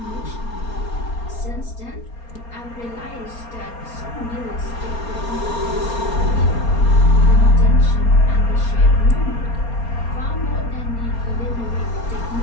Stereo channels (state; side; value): late; right; 4.3 ms